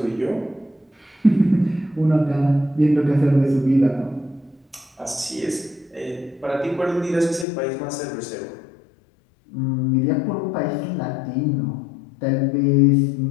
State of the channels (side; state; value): right; drops out; at 7.5 s